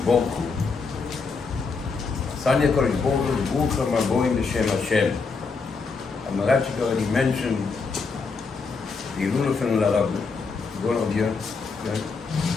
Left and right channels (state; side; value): quieter; right; 4.7 dB